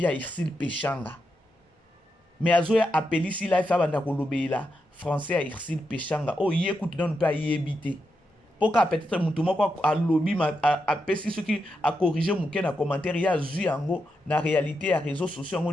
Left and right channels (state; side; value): normal; both; correlation 0.85